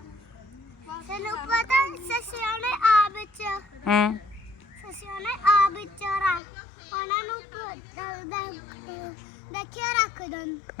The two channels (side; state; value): right; drops out; at 6.4 s